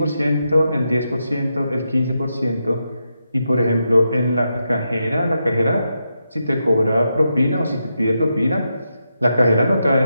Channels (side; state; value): both; inverted; correlation -0.85